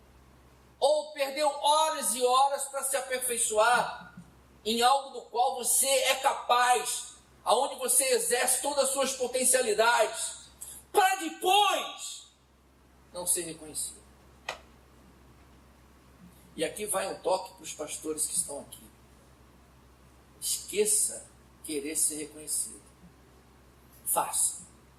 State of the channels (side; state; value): both; identical; correlation 1.00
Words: ou perdeu horas e horas para se aperfeiçoar em algo do qual você é capaz, aonde você exerce todas as suas potencialidades, para depois não ser reconhecido. E aqui vai um toque para os pastores que estão aqui. Esqueça querer ser reconhecido. Faça.